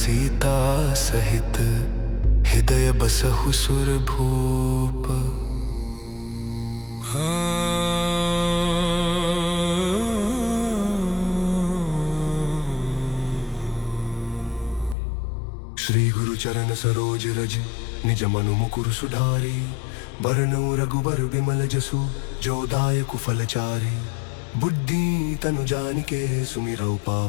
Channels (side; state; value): right; drops out; at 15.0 s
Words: सहित, हृदय बसहु सुर भूप। श्री गुरु चरण सरोज रज, निज मनु मुकुर सुधारी। बरनउँ रघुबर बिमल जसु, जो दायकु फलचारी। बुद्धि तनु जानिके, सुमिरौ